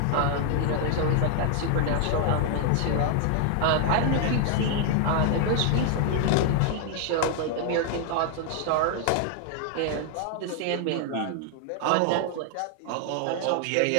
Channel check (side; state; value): both; different; correlation 0.00